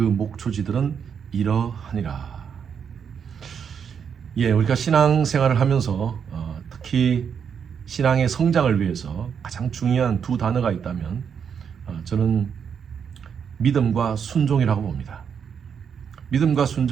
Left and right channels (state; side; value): quieter; left; 7.2 dB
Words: 목초지들은 이러하니라. 우리가 신앙생활을 하면서 특히 신앙의 성장을 위해서 가장 중요한 두 단어가 있다면 저는 믿음과 순종이라고 봅니다. 믿음과